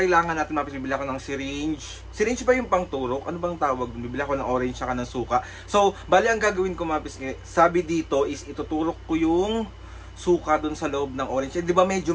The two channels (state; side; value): identical; both; correlation 1.00